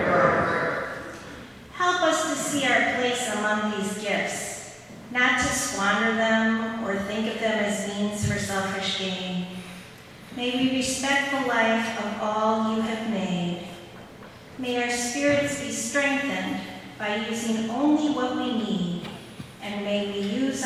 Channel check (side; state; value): both; identical; correlation 1.00